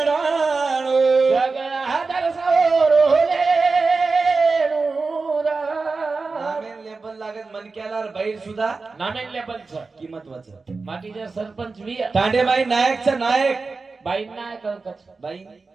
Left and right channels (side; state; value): left; quieter; 4.1 dB